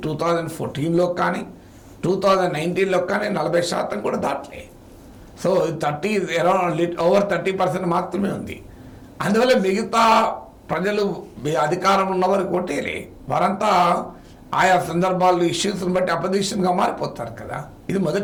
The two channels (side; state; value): both; identical; correlation 1.00